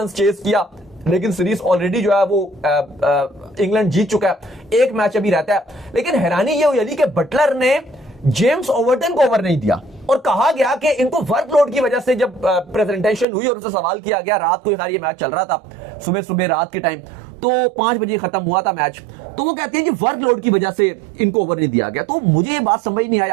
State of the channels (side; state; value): left; drops out; at 13.2 s